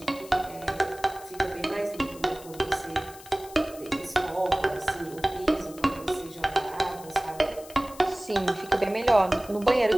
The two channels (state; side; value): noise; left; hiss, 19 dB below the sound